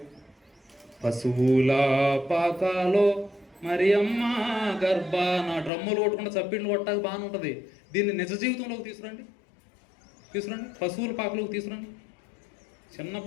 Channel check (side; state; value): right; drops out; at 5.7 s